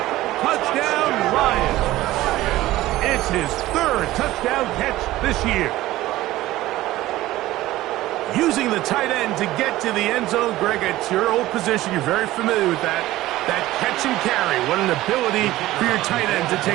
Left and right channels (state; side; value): quieter; left; 16.4 dB